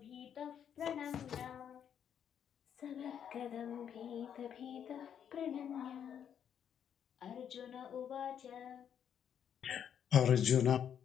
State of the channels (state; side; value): quieter; right; 8.7 dB